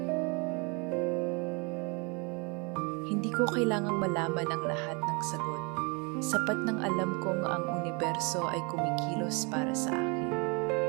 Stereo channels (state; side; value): quieter; left; 31.2 dB